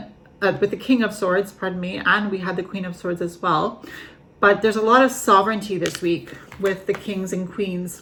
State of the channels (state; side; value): identical; both; correlation 1.00